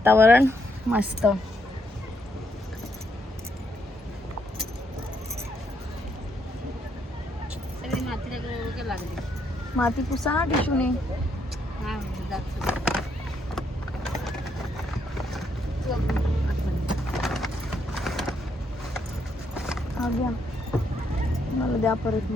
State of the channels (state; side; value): normal; both; correlation 0.75